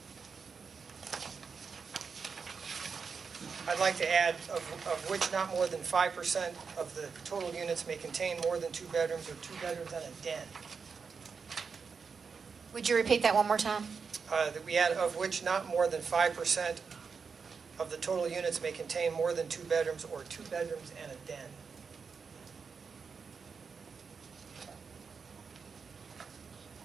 I'd like to add of which not more than 5% of the total units may contain more than 2 bedrooms or 2 bedrooms and a den. Would you repeat that one more time? That we add of which not more than 5% of the total units may contain more than 2 bedrooms or 2 bedrooms and a den.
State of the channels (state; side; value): quieter; left; 5.5 dB